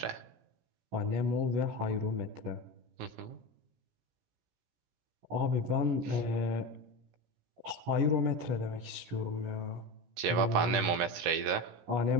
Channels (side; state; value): left; late; 17 ms